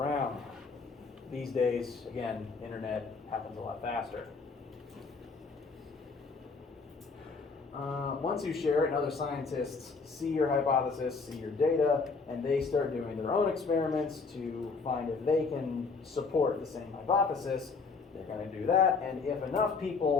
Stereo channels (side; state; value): right; quieter; 4.5 dB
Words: These days, again, internet happens a lot faster. Once you share it and other scientists see your hypothesis, see your data, and they start doing their own experiments to find if they can support the same hypothesis, they're going to do that. And if enough